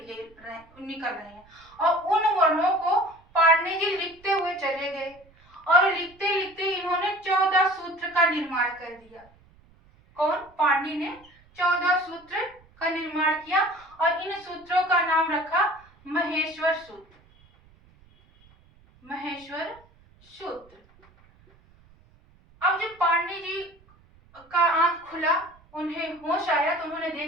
निकल रहे हैं, और उन वर्णों को पारनी जी लिखते हुए चले गए। और लिखते लिखते इन्होंने 14 सूत्र का निर्माण कर दिया। कौन? पारनी ने 14 सूत्र का निर्माण किया, और इन सूत्रों का नाम रखा महेश्वर सूत्र। महेश्वर सूत्र। अब जब पारनी जी का आंख खुला, उन्हें होश आया, तो उन्होंने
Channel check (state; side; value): noise; right; rumble, 29 dB below the sound